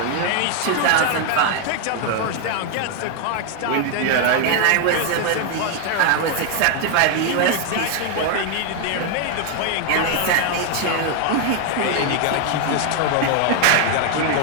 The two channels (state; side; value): different; both; correlation 0.01